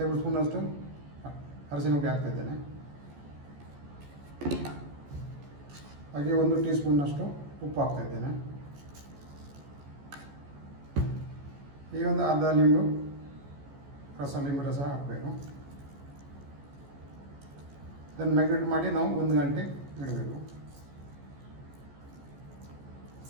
ಸ್ಪೂನಷ್ಟು ಅರಸಿನ ಹುಡಿ ಹಾಕ್ತಾಯಿದ್ದೇನೆ. ಹಾಗೆ 1 ಟೀ ಸ್ಪೂನ್ನಷ್ಟು ಉಪ್ಪು ಹಾಕ್ತಾಯಿದ್ದೇನೆ. ಈಗ ಒಂದು ಅರ್ಧ ಲಿಂಬು ರಸ ಹಾಕಬೇಕು. ಇದನ್ನು ಮ್ಯಾಗ್ನೇಟ್ ಮಾಡಿ ನಾವು 1 ಗಂಟೆ ಇಡಬೇಕು.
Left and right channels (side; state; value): left; late; 14 ms